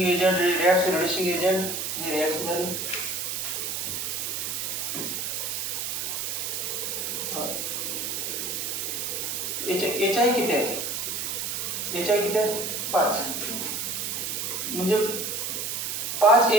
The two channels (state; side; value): noise; right; hiss, 2 dB below the sound